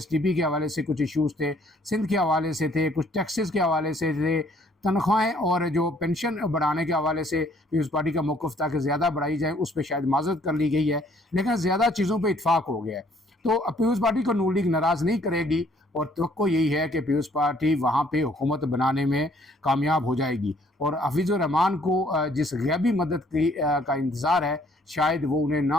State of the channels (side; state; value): both; normal; correlation 0.62